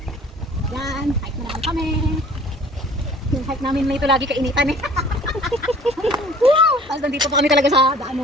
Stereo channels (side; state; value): both; normal; correlation 0.50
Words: Yan, hike na lang kami. Yung hike namin may ito lagi kainitan eh. Tapos nandito pa kami talaga sa